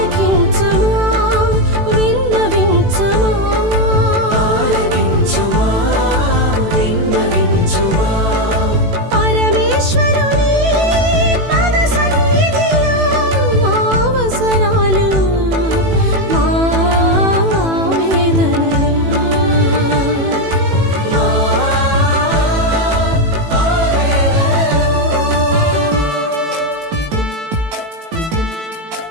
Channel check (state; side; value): late; left; 18 ms